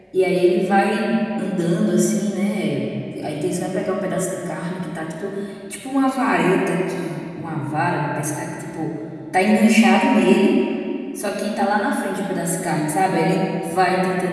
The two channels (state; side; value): identical; both; correlation 1.00